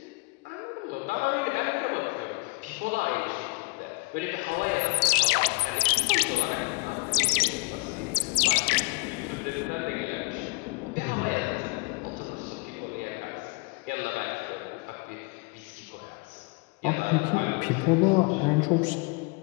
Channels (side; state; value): right; quieter; 29.4 dB